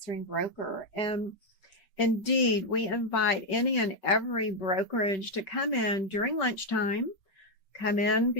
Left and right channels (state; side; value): late; right; 3.5 ms